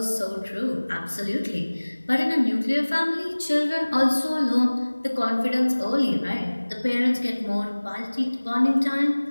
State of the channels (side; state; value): both; inverted; correlation -1.00